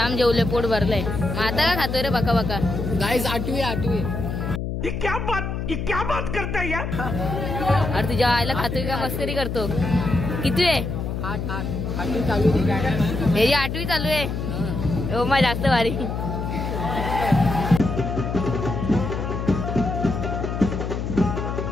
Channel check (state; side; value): noise; left; hum, 3 dB below the sound